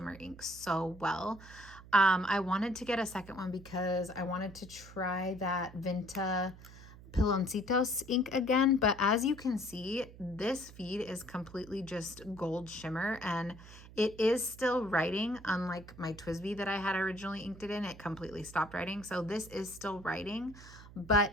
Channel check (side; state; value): right; noise; hum, 18 dB below the sound